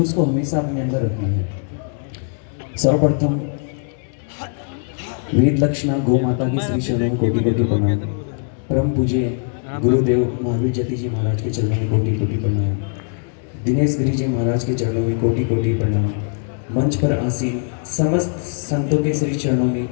को हमेशा अपने अंदर रखना है। सर्वप्रथम वेद लक्षणा गौ माता की श्री चरणों में कोटि कोटि प्रणाम। परम पूज्य गुरुदेव महावीर जति जी महाराज के चरणों में कोटि कोटि प्रणाम। दिनेश गिरी जी महाराज के चरणों में कोटि कोटि प्रणाम। मंच पर आसीन समस्त संतों के श्री चरणों में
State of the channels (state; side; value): silent; right; 57 dB below the other